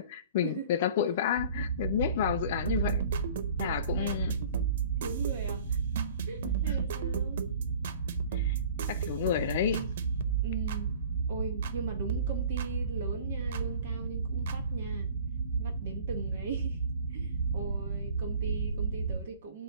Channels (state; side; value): inverted; both; correlation -0.47